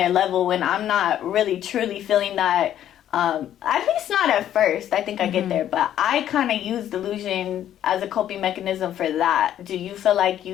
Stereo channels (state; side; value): quieter; right; 11.1 dB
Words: level when I'm not really truly feeling that. At least not at first. I think I get there, but I kind of use delusion as a coping mechanism for that. Do you feel like